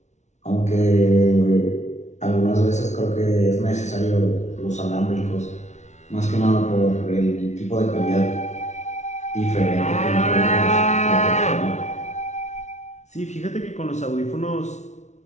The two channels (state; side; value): late; right; 0.33 ms